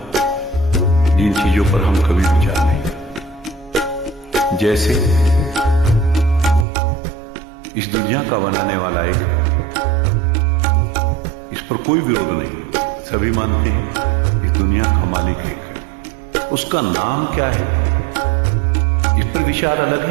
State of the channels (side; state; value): left; drops out; at 6.7 s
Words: जिन चीजों पर हम कभी विचार नहीं। जैसे इस दुनिया का बनाने वाला एक, इस पर कोई विरोध नहीं, सभी मानते हैं इस दुनिया का मालिक एक है। उसका नाम क्या है इस पर विचार अलग